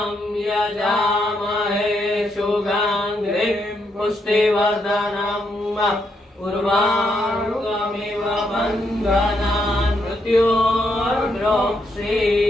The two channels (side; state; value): both; normal; correlation 0.78